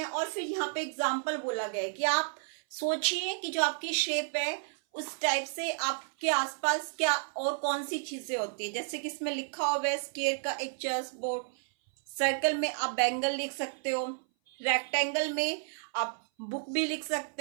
और फिर यहाँ पे एग्जांपल बोला गया है कि आप सोचिए कि जो आपकी शेप है उस टाइप से आपके आसपास क्या और कौन सी चीजें होती है। जैसे कि इसमें लिखा हुआ है स्क्वायर का एक चेस बोर्ड, सर्कल में आप बैंगल लिख सकते हो, रेक्टेंगल में आप बुक भी लिख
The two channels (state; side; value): silent; left; 56 dB below the other